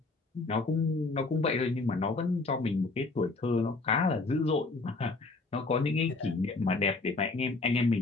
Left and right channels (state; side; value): quieter; right; 3.5 dB